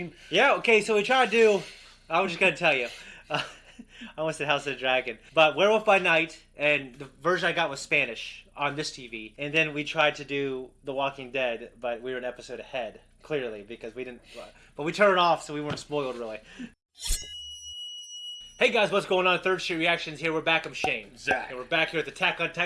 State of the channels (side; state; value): both; identical; correlation 1.00